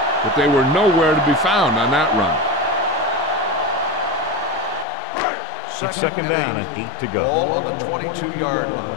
but they were nowhere to be found on that run. It's second down and 8 to go. Ball on the 22-yard line.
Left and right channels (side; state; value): right; drops out; at 4.9 s